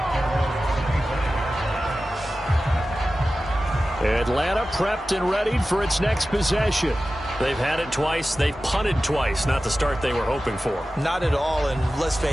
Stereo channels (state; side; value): normal; both; correlation 0.95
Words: Atlanta prepped and ready for its next possession. They've had it twice. They've punted twice. Not the start they were hoping for. Not at all, and let's